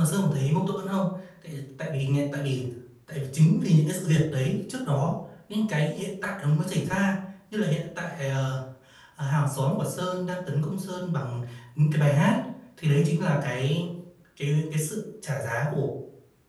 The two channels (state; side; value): identical; both; correlation 1.00